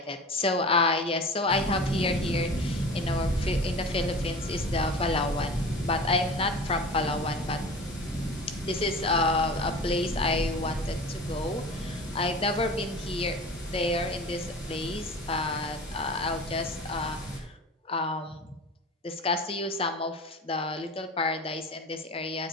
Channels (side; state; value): both; normal; correlation 0.37